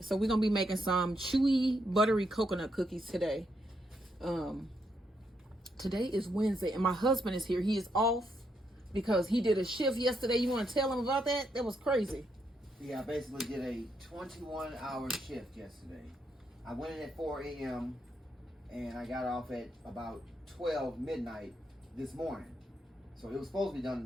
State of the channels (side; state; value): both; normal; correlation 0.78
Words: we're gonna be making some chewy buttery coconut cookies today. Today is Wednesday and my husband is here. He is off because he did a shift yesterday. You want to tell him about that? That was crazy. Yeah, I basically did a 21-hour shift yesterday. I went in at 4 a.m. and I got off at about 12 midnight this morning. So it was supposed to be done